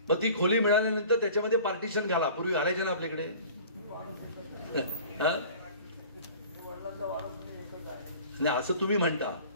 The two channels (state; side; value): inverted; both; correlation -0.45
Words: मग ती खोली मिळाल्यानंतर त्याच्यामध्ये पार्टिशन घाला. पूर्वी घालायचे ना आपल्याकडे. नाही असं तुम्ही म्हणता.